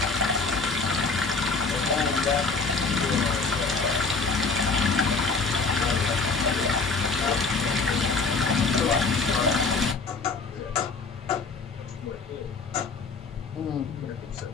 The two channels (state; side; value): quieter; right; 4.2 dB